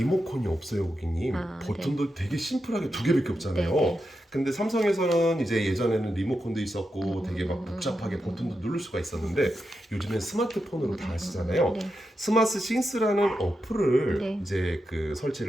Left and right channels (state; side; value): normal; both; correlation 0.88